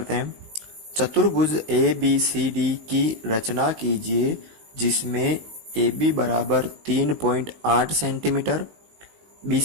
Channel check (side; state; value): left; late; 19 ms